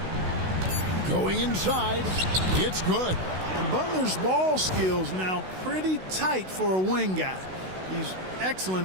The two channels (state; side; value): late; left; 16 ms